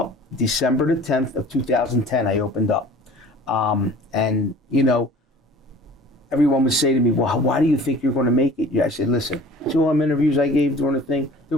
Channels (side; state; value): both; normal; correlation 0.46